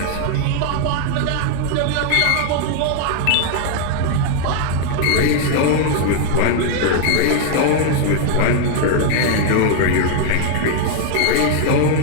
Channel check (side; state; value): both; different; correlation 0.00